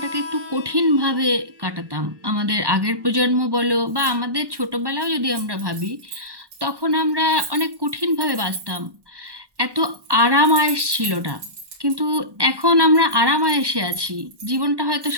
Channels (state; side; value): late; left; 1.1 ms